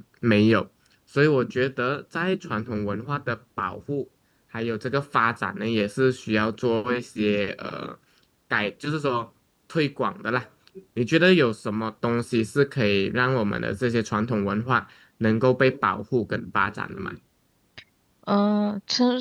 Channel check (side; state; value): both; identical; correlation 1.00